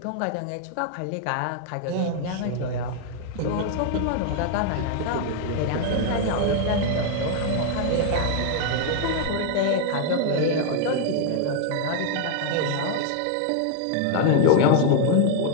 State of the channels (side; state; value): both; different; correlation 0.00